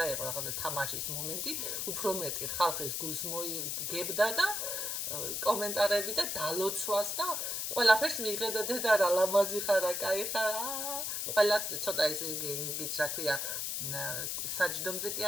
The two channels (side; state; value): left; noise; hiss, 2 dB below the sound